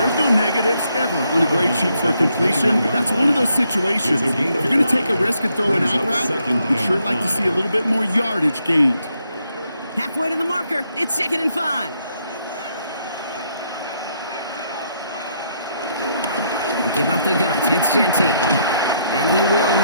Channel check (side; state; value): both; inverted; correlation -0.75